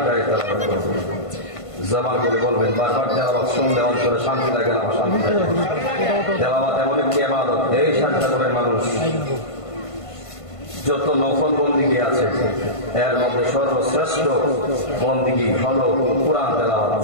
তেলাওয়াত করব, জবান করে বলবেন। বারবার তেলাওয়াত শুনলে অন্তরে শান্তি লাগে না অশান্তি লাগে? তেলাওয়াত এমন একটি ইবাদত, এই শাহজাদপুরের মানুষ যত নফল বন্দিগি আছে এর মধ্যে সর্বশ্রেষ্ঠ বন্দিগি হলো কোরআন তেলাওয়াত।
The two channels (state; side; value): late; right; 1.5 ms